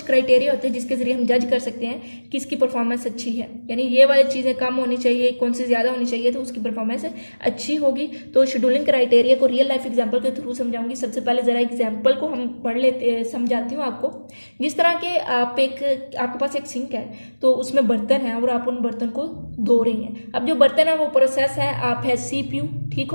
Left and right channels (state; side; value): inverted; both; correlation -1.00